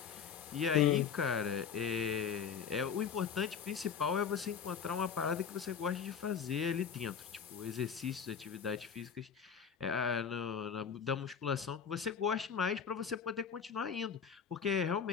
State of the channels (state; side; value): quieter; right; 7.1 dB